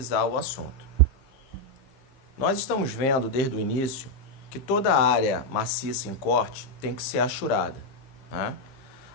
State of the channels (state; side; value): late; right; 15 ms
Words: o assunto. Nós estamos vendo desde o início que toda área maciça em corte tem que ser ashurada, né?